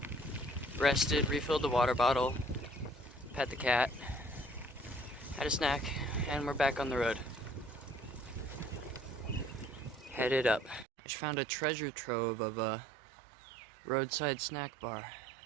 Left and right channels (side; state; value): left; drops out; at 10.9 s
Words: rested, refilled the water bottle, pet the cat, had a snack, and we're back on the road. Headed up. I just found a treasure trove of a roadside snack bar.